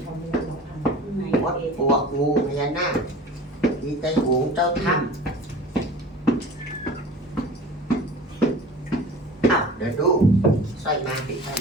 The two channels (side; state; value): both; normal; correlation 0.40